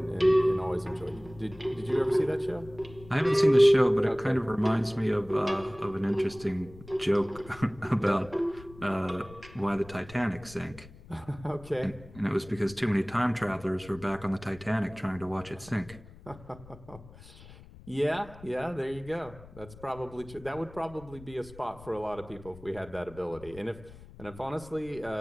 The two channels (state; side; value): noise; left; rumble, 19 dB below the sound